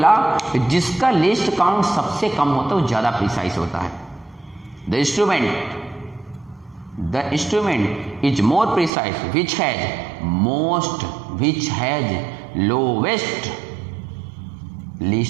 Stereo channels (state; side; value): drops out; left; at 8.9 s